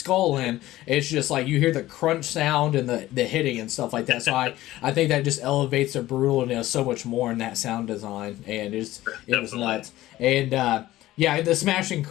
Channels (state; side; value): quieter; right; 15.9 dB